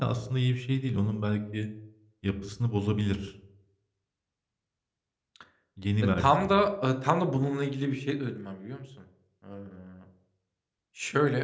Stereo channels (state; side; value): identical; both; correlation 1.00